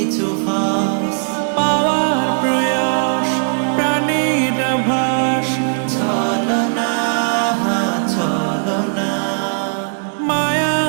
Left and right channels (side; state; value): left; silent; digital silence